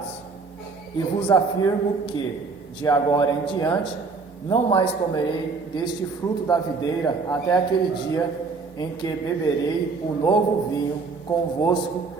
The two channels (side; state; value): left; quieter; 4.4 dB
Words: E vos afirmo que, de agora em diante, não mais comerei deste fruto da videira até aquele dia em que beberei o novo vinho convosco